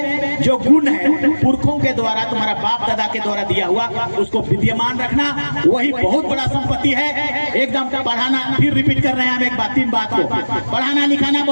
जो गुण है पुरखों के द्वारा, तुम्हारा बाप दादा के द्वारा दिया हुआ, उसको विद्यमान रखना, वही बहुत बड़ा संपत्ति है। एकदम बढ़ाना, फिर रिपीट कर रहे हैं हम एक बात, 3 बात को पढ़ाना लिखाना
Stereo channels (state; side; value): inverted; both; correlation -1.00